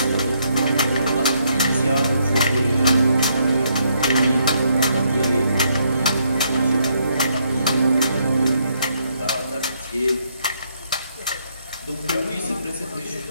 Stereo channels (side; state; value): both; inverted; correlation -0.73